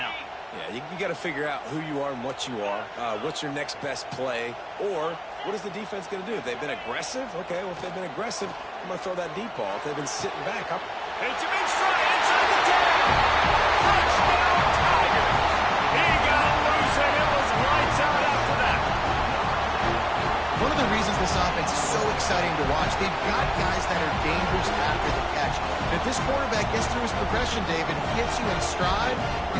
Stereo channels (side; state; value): both; identical; correlation 1.00